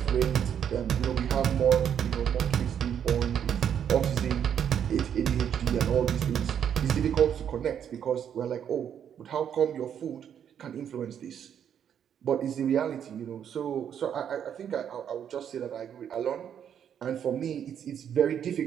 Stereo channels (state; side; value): quieter; left; 8.8 dB